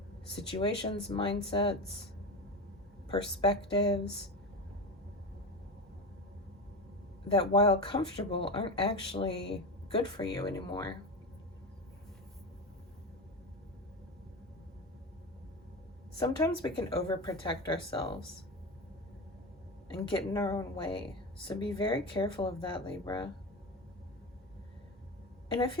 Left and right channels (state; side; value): normal; both; correlation 0.22